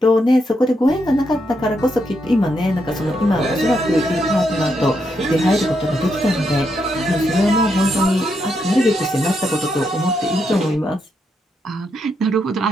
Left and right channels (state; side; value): normal; both; correlation 0.80